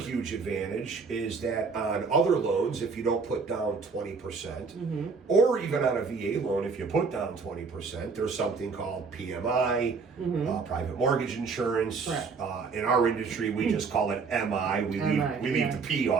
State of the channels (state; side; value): quieter; left; 4.9 dB